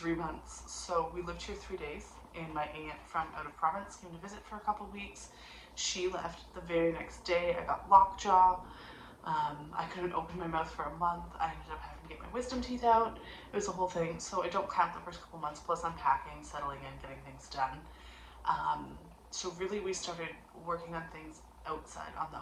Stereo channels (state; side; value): identical; both; correlation 1.00